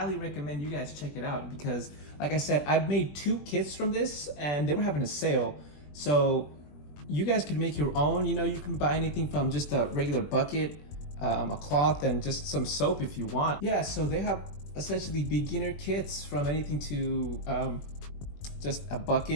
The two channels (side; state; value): right; late; 20 ms